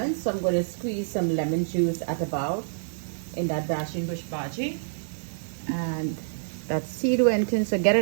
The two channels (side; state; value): left; silent; digital silence